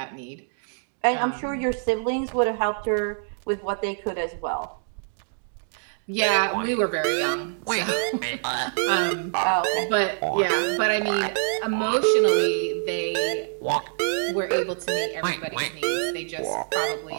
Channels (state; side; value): silent; left; digital silence